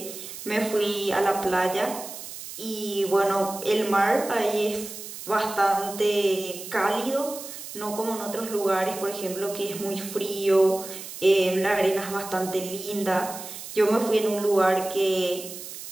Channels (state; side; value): noise; right; hiss, 11 dB below the sound